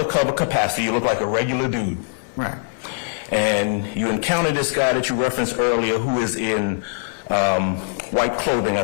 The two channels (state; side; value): silent; right; digital silence